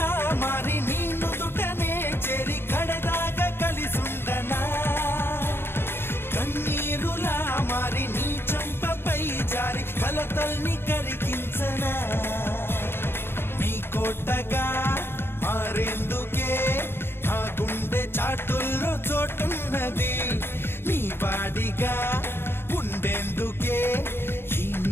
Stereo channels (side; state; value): right; late; 0.11 ms